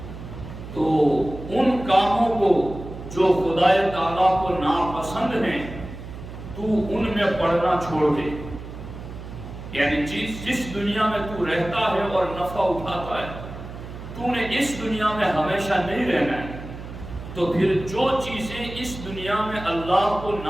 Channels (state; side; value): noise; right; hum, 12 dB below the sound